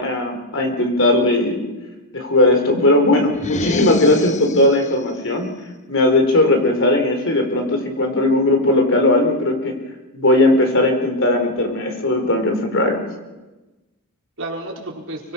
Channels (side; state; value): both; normal; correlation 0.02